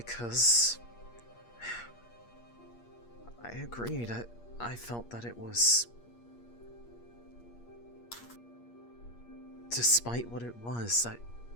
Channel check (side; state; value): right; late; 8.5 ms